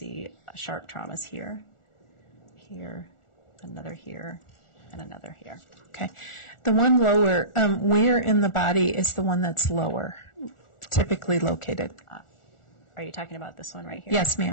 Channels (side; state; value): right; late; 1.4 ms